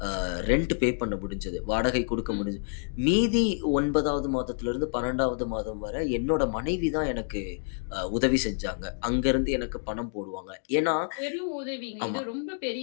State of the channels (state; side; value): silent; right; digital silence